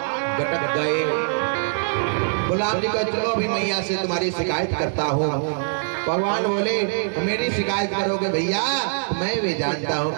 गटक गए। बलराम जी का चलो अभी मैया से तुम्हारी शिकायत करता हूँ। भगवान बोले मेरी शिकायत करोगे भैया, मैं भी जानता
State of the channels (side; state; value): left; silent; digital silence